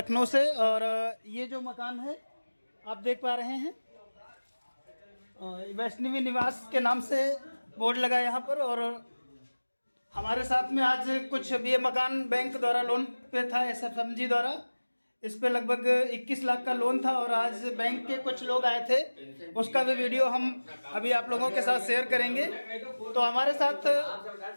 से। और ये जो मकान है आप देख पा रहे हैं, वैष्णवी निवास के नाम से बोर्ड लगा है यहाँ पर। और हमारे साथ में आज कुछ ये मकान बैंक द्वारा लोन पे था, SFMG द्वारा। इस पे लगभग 21 लाख का लोन था और आज बैंक के कुछ लोग आए थे, उसका भी वीडियो हम अभी आप लोगों के साथ शेयर करेंगे। तो हमारे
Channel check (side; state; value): both; inverted; correlation -1.00